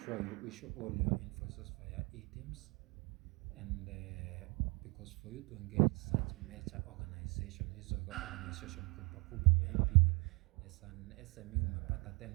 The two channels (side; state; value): left; quieter; 28.5 dB